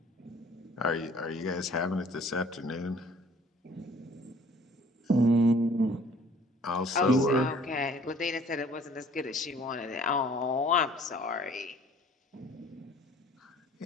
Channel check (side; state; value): both; normal; correlation 0.54